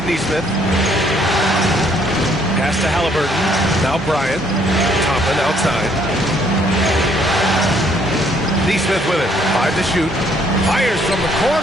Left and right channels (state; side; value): normal; both; correlation 0.66